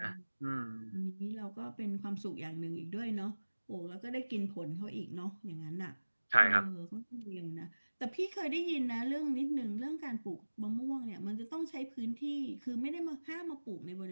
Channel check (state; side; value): inverted; both; correlation -1.00